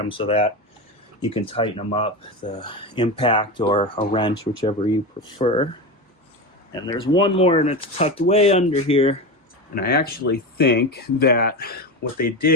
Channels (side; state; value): both; normal; correlation 0.20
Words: so that you can tighten them up, the impact or a wrench, whichever you prefer. And there's one more, and it's tucked way under here. And I actually think that what they